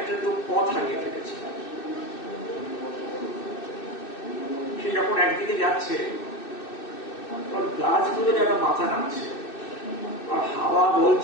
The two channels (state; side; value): late; right; 2.6 ms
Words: পথ হারিয়ে ফেলেছে। সে যখন একদিকে যাচ্ছে গাছগুলো যেন মাথা নামছে, আর হাওয়া